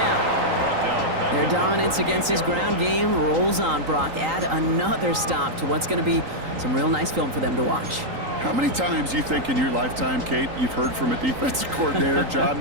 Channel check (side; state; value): left; late; 3.8 ms